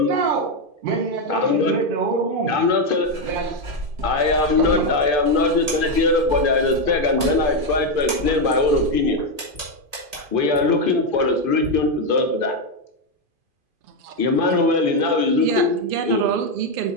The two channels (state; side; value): late; left; 2.5 ms